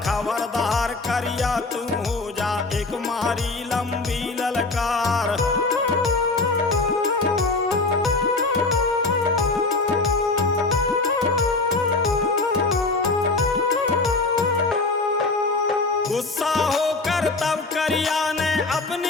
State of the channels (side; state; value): right; quieter; 3.4 dB